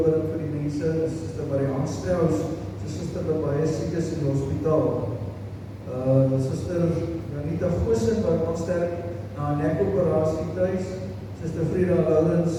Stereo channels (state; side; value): identical; both; correlation 1.00